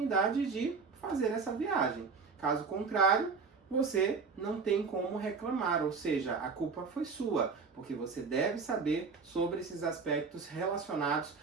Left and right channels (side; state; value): left; quieter; 5.0 dB